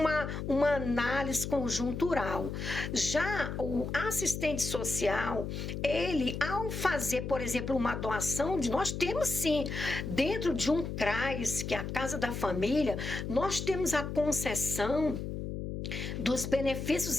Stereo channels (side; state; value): left; noise; hum, 5 dB below the sound